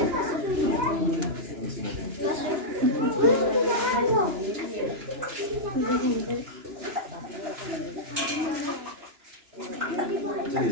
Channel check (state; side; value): late; left; 2.9 ms